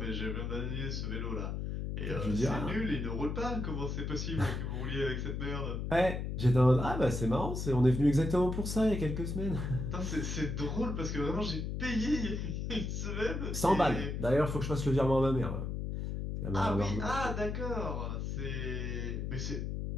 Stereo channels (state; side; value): noise; left; hum, 3 dB below the sound